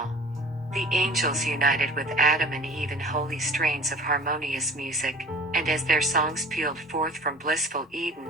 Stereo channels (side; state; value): both; normal; correlation 0.44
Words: The angels united with Adam and Eve in holy strains of harmonious music, and as their songs pealed forth from blissful Eden,